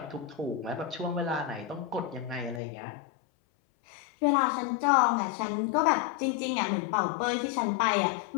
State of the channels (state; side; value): drops out; right; at 2.6 s